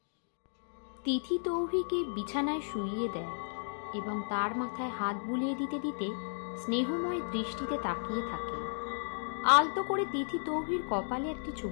তিথি তৌহিকে বিছানায় শুইয়ে দেয় এবং তার মাথায় হাত বুলিয়ে দিতে দিতে স্নেহময় দৃষ্টিতে তাকিয়ে থাকে। আলতো করে তিথি তৌহির কপালে একটি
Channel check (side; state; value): right; silent; digital silence